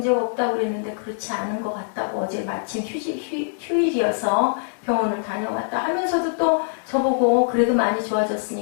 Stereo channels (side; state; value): right; silent; digital silence